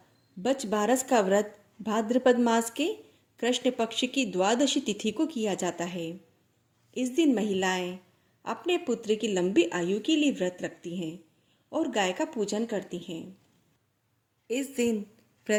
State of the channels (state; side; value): identical; both; correlation 1.00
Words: बच बारस का व्रत भाद्रपद मास के कृष्ण पक्ष की द्वादशी तिथि को किया जाता है। इस दिन महिलाएं अपने पुत्र की लंबी आयु के लिए व्रत रखती हैं और गाय का पूजन करती हैं। इस दिन